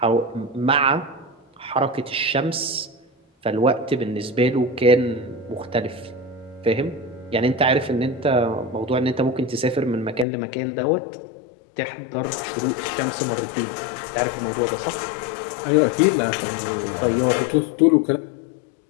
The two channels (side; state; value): right; drops out; at 10.2 s